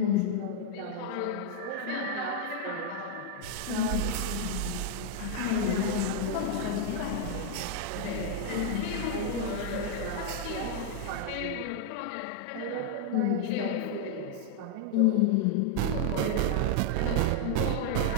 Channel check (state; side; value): different; both; correlation 0.00